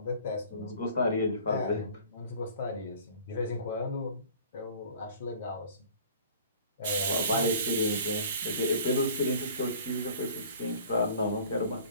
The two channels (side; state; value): both; inverted; correlation -0.48